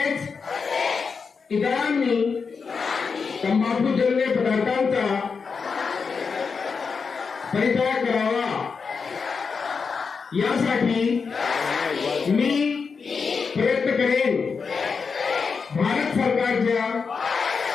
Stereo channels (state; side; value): quieter; right; 5.3 dB